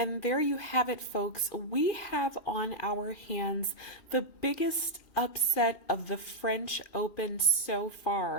there you have it, folks. We have on our hands the biggest upset of the French Open so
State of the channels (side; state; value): right; late; 2.6 ms